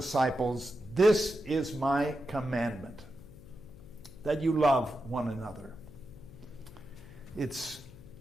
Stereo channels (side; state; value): left; noise; hum, 19 dB below the sound